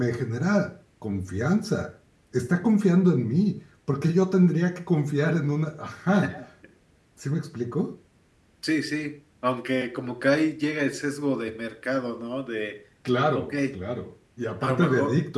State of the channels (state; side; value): identical; both; correlation 1.00